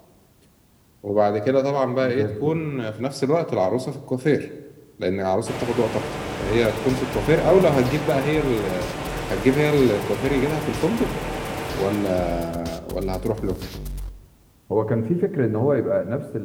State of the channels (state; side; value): identical; both; correlation 1.00